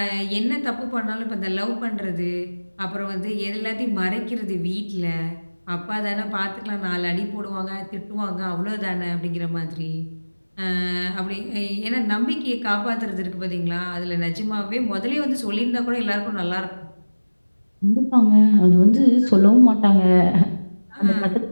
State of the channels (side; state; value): both; inverted; correlation -1.00